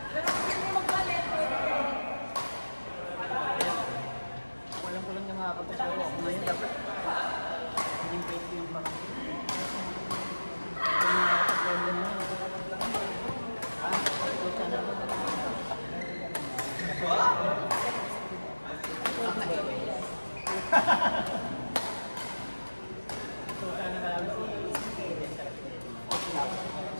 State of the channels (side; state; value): both; inverted; correlation -1.00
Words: Pero kung hindi magbalit, Walang ko lang yung makakapagsawa ako ngayon. Dapat hindi pwede yung parang kung nakakapagsawa mo. Ito sana ba?